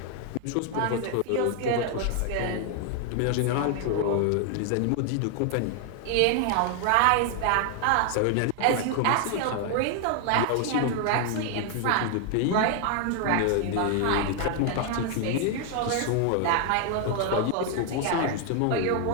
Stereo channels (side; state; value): both; different; correlation 0.00